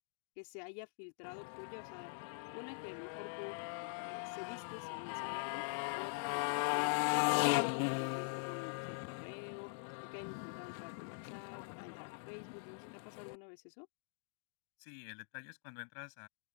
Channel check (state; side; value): silent; right; digital silence